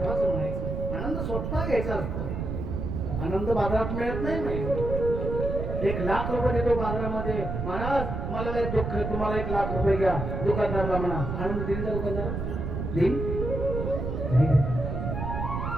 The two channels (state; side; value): noise; right; rumble, 3 dB below the sound